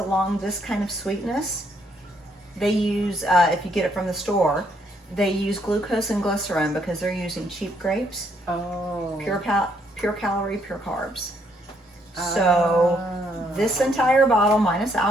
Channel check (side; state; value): both; normal; correlation 0.71